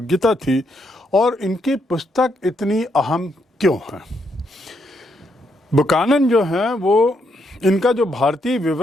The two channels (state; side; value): normal; both; correlation 0.77